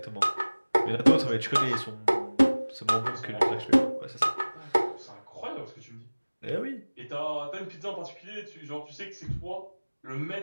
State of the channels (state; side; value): inverted; both; correlation -1.00